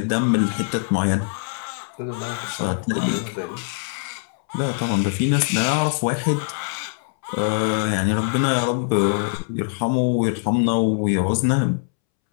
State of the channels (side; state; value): right; silent; 64 dB below the other